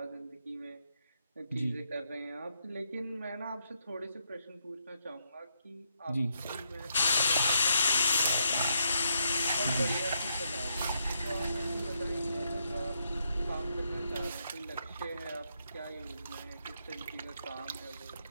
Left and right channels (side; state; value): both; inverted; correlation -0.79